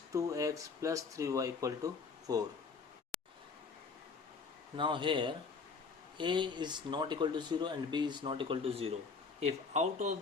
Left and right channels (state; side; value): quieter; right; 4.9 dB